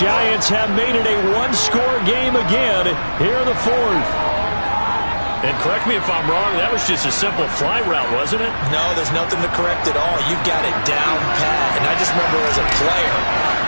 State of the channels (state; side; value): inverted; both; correlation -1.00